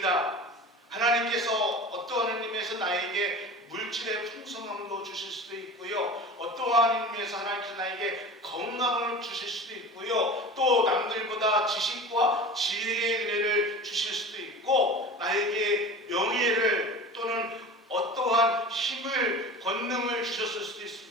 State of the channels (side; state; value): both; normal; correlation 0.35